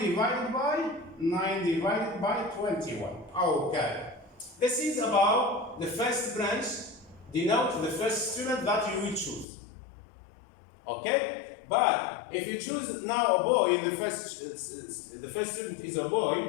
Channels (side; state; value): right; drops out; at 9.5 s